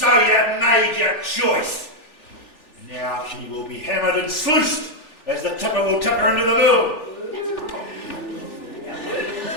you've made your choice. Now she will be hammered and sluiced as the tipper will tip her into the mill.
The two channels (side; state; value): right; late; 3.4 ms